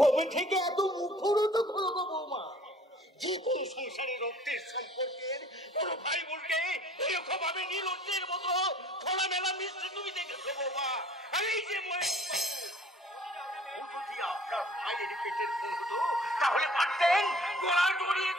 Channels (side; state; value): both; normal; correlation 0.52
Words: থেকে এত মুখরোধ হলো গো বৌমা? যে কোনো সংসারের রক্তের সম্পর্কের কোন ভাই বোনকে এরকম ভাবে নীলজ্জের মতো খোলামেলা মিশতে তুমি দেখেছো বৌমা? আর এই যে যদি আপনার মায়ের পেটের ফোন হতো তাহলে পারতেন গলা জড়িয়ে